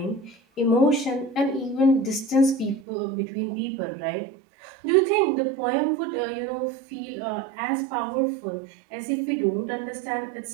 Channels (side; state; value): left; drops out; at 2.9 s